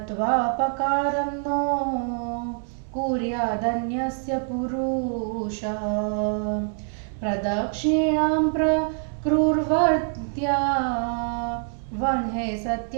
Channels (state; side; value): silent; left; 62 dB below the other